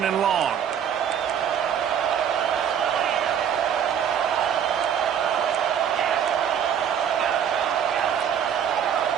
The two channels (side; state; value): left; quieter; 8.6 dB